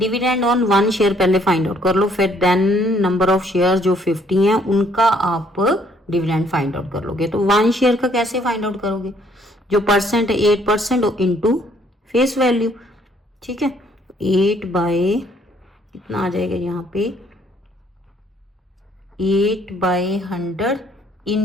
ऑन 1 शेयर पहले फाइंड आउट कर लो, फिर देन नंबर ऑफ शेयर जो 50 हैं उनका आप डिविडेंड फाइंड आउट कर लोगे। तो 1 शेयर का कैसे फाइंड आउट करोगे, जो परसेंट है 8% इंटू फेस वैल्यू, ठीक है। 8 बाय कितना आ जाएगा यहाँ पे, 8/100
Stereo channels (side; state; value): both; normal; correlation 0.65